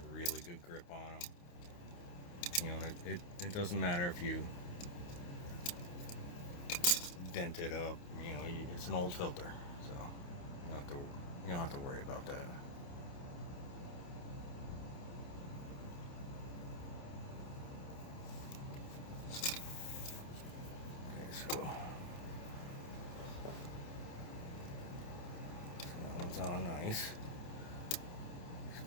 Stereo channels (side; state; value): right; late; 29 ms